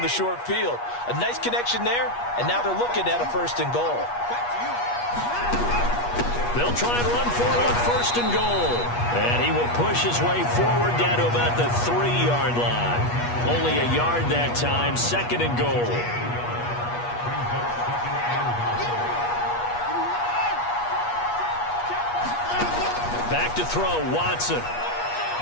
the short field. A nice connection there, and now they're looking at a 1st and goal. They'll try and run for it on 1st and goal. And he will push his way forward down to about the 3-yard line. Only a yard that time, 2nd and goal. Back to throw, Watson.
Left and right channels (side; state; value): right; late; 8.3 ms